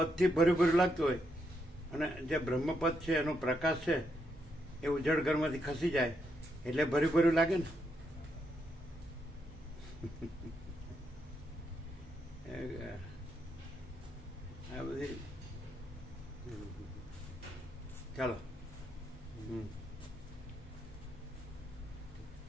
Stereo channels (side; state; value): both; normal; correlation 0.79